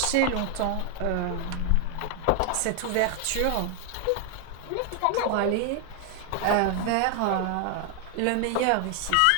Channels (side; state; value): both; different; correlation 0.00